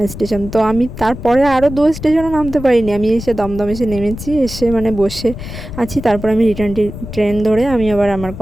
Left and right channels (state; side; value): noise; left; rumble, 11 dB below the sound